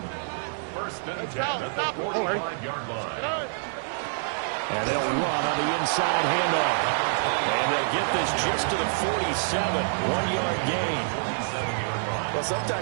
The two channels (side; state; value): left; silent; digital silence